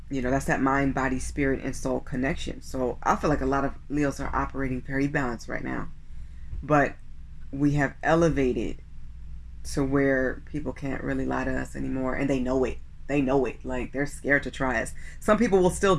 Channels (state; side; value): identical; both; correlation 1.00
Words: you know, that's that mind, body, spirit, and soul connection. So I feel like a lot of Leos are operating very balanced right now, but we have elevated to where people can't really lie to us anymore, and they know it. They know it. Like, they're scared to try us. Some people will still